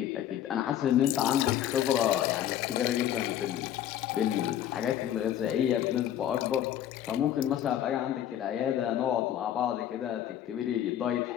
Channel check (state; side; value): quieter; right; 11.0 dB